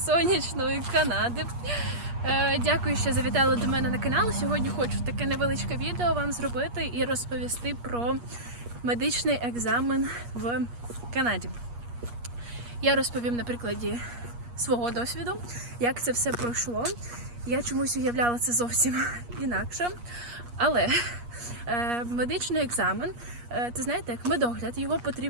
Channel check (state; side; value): late; left; 8.4 ms